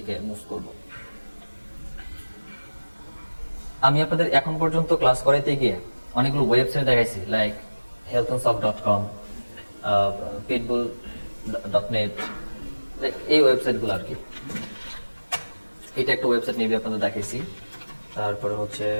মুভ করব। আমি আপনাদের এখন পর্যন্ত ক্লাস করাইতে গিয়ে অনেকগুলো ওয়েবসাইট দেখাইছি, লাইক healthandsoft.com, pitbull.net, এই ওয়েবসাইটগুলো আর কি। এটা একটা ওয়েবসাইট মেবি আপনাদের দেখাইছি। তারপরে হচ্ছে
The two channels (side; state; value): both; inverted; correlation -1.00